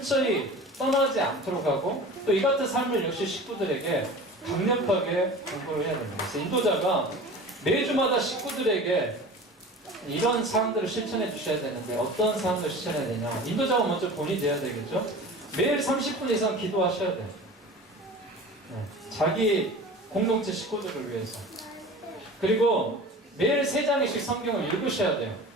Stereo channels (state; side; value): normal; both; correlation 0.38